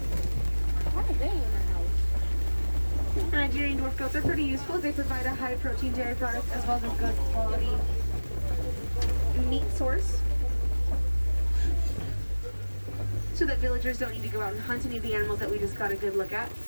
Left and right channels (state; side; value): inverted; both; correlation -1.00